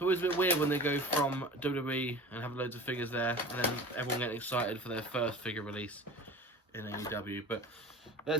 always a bit weird when they go from WWE and have loads of figures there, and then everyone getting excited for their first figure release in AEW. But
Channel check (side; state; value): both; normal; correlation 0.38